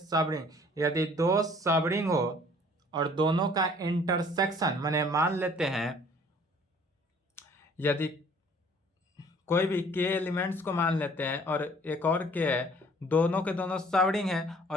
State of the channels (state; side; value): normal; both; correlation 0.55